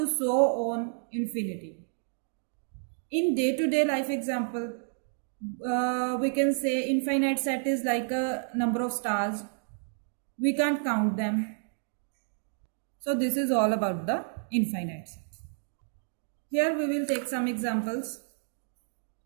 so on infinity. In day-to-day life example, we can say infinite set is like a number of stars. We can't count them. So this is all about the infinite set. Here we will take some examples.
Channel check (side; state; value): left; silent; digital silence